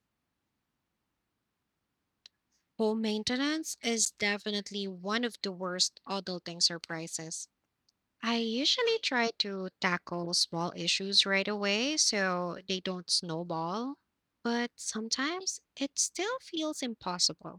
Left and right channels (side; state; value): both; identical; correlation 1.00